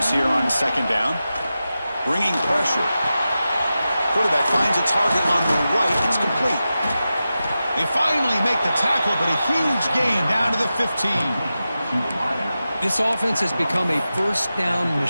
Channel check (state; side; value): inverted; both; correlation -0.93